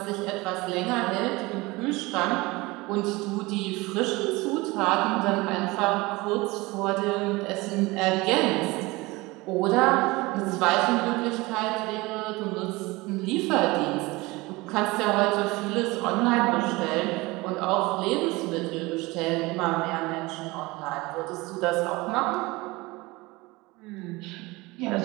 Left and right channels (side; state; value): left; quieter; 22.4 dB